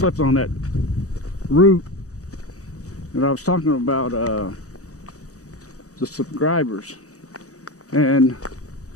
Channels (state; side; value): late; right; 0.66 ms